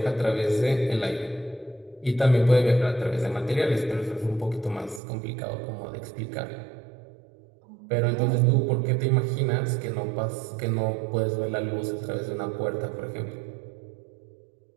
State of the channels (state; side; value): drops out; left; at 5.0 s